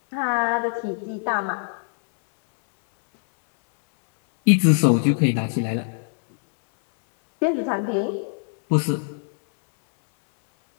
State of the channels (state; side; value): silent; right; 64 dB below the other